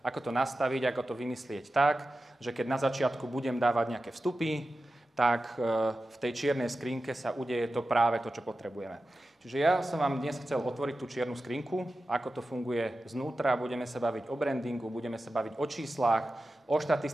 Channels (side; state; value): both; normal; correlation 0.93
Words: to nastaviť, ako to vymyslieť tak, že keď na začiatku budem dávať nejaké vstupy, tak v tej čiernej skrinke sa udeje to práve to, čo potrebujeme. Čiže ja som vám dnes chcel otvoriť tú čiernu skrinku, ako to funguje znútra, budeme sa baviť o brandingu, budeme sa baviť o číslach, o